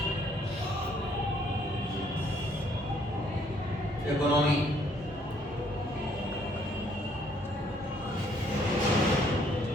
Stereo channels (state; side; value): normal; both; correlation 0.65